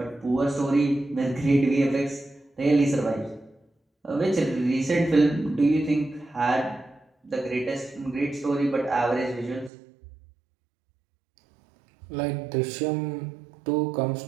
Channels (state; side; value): drops out; left; at 9.7 s